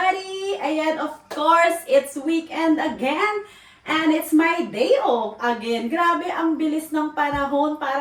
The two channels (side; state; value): both; identical; correlation 1.00